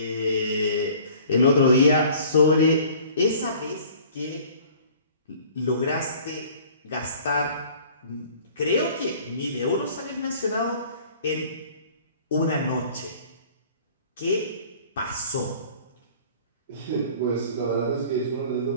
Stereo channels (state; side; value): inverted; both; correlation -0.50